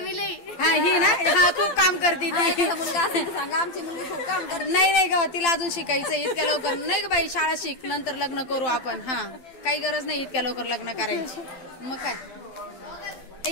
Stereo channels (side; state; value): right; late; 12 ms